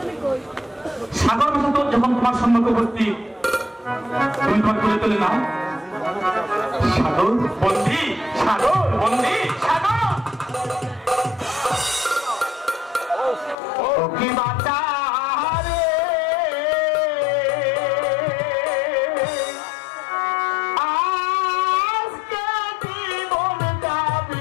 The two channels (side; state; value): right; drops out; at 13.6 s